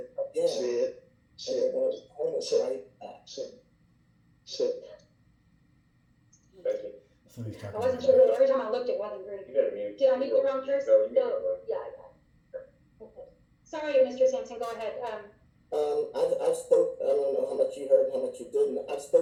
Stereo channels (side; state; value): both; identical; correlation 1.00